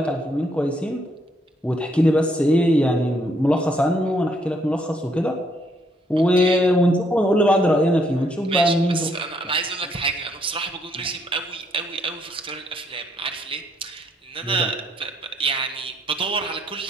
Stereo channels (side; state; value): both; normal; correlation 0.71